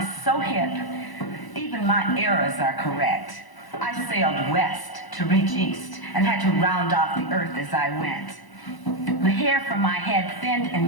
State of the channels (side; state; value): right; late; 1.0 ms